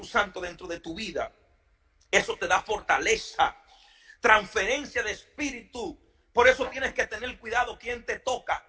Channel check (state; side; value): identical; both; correlation 1.00